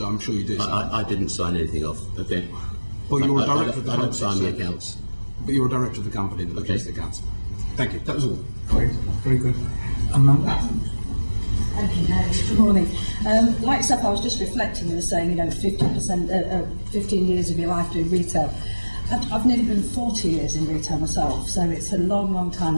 I'm sure you do. I didn't sign anything off. Okay. Well, you were a director of the I company. don't sign the accounts. But you were a director of the company that Okay. the accounts. Thank you. That was all. Great. Very good. Amanda? Thank you, Mary. Good morning. Like yourself, I was just reflecting. You were saying, 50%, 15 years of your life doing retail. I've nearly been 40 years in retail myself, so it's a long, long time,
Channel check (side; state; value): both; inverted; correlation -1.00